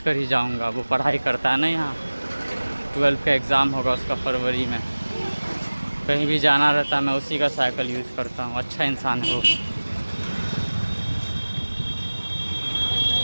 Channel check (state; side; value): inverted; both; correlation -1.00